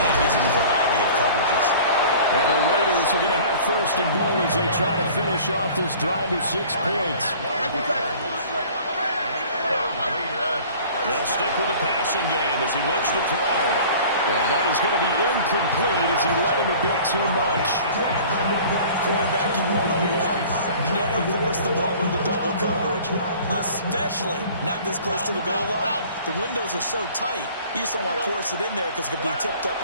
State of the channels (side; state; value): both; inverted; correlation -0.47